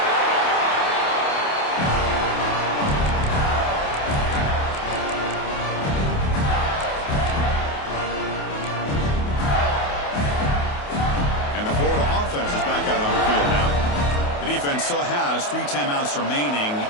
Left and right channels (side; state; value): right; late; 28 ms